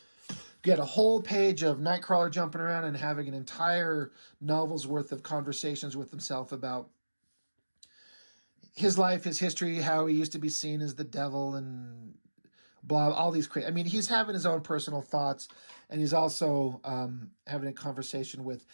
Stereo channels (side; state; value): both; inverted; correlation -1.00